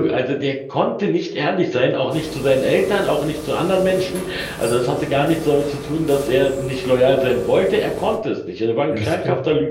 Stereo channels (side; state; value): both; identical; correlation 1.00